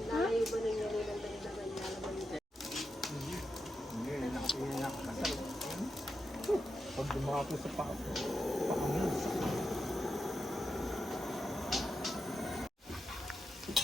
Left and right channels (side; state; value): both; normal; correlation 0.87